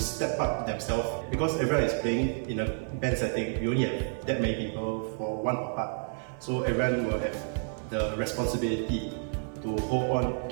up themselves because everyone is playing in a band setting. We only have that many people for one part, so everyone will have the responsibility to hold on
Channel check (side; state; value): left; silent; 58 dB below the other